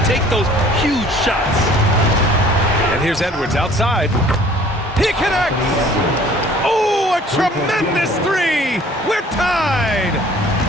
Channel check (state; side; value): normal; both; correlation 0.53